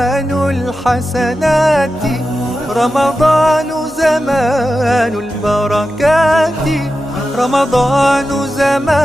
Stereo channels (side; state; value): left; noise; hum, 26 dB below the sound